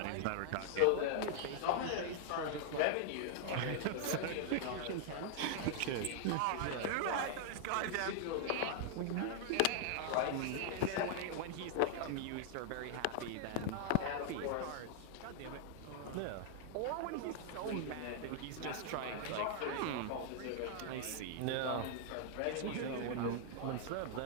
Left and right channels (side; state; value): both; different; correlation -0.01